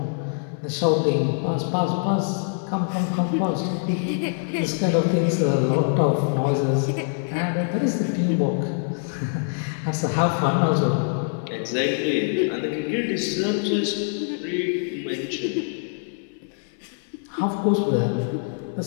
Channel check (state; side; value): silent; right; 60 dB below the other